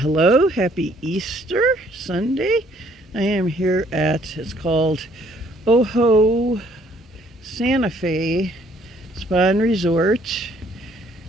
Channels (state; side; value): normal; both; correlation 0.63